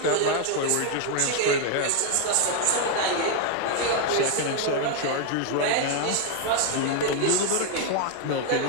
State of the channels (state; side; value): different; both; correlation 0.00